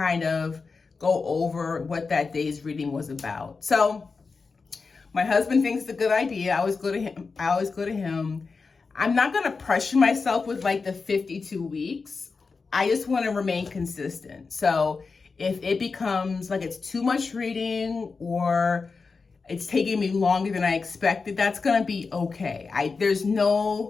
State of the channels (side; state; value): right; quieter; 4.6 dB